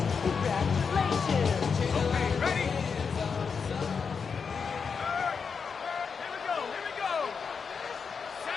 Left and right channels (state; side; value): quieter; right; 5.8 dB